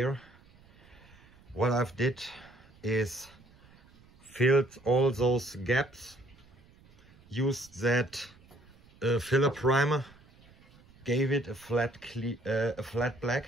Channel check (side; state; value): right; noise; rumble, 27 dB below the sound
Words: What I've did is filled all those gaps, used that filler primer, gave it a flat black,